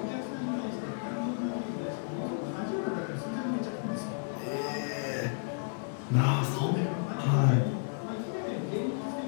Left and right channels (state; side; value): silent; right; 56 dB below the other